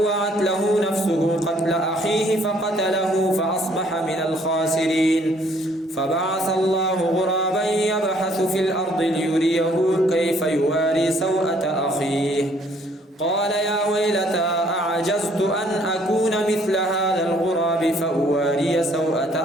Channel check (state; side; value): normal; both; correlation 0.63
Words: له نفسه قتل أخيه فقتله فأصبح من الخاسرين. فبعث الله غرابا يبحث في الأرض ليريه كيف يواري سوءة أخيه قال يا ويلتى أعجزت أن أكون مثل هذا الغراب فأواري سوءة